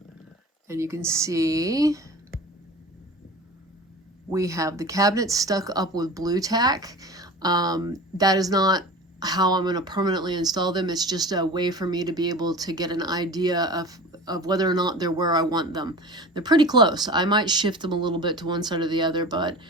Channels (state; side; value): normal; both; correlation 0.35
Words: and you can see we have the cabinet stuck up with blue tack. That is not how I'm going to permanently install them. It's just a way for me to be able to get an idea of whether or not they're where I want them. They're pretty close. I might shift them a little bit to one side or the other, but